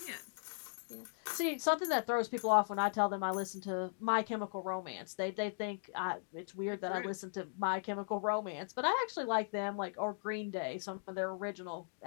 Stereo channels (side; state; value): right; silent; digital silence